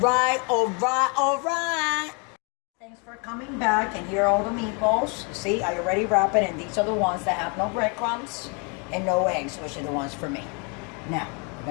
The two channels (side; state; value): right; quieter; 34.2 dB